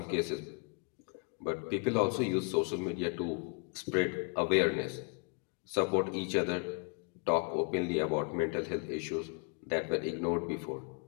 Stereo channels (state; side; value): quieter; right; 37.0 dB